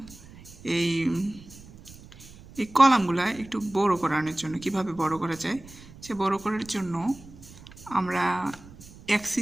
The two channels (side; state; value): right; noise; rumble, 20 dB below the sound